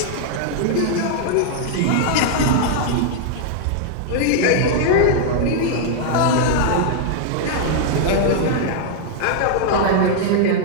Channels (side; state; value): both; different; correlation -0.01